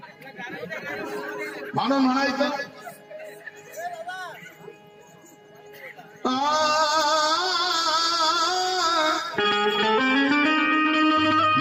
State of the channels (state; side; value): identical; both; correlation 1.00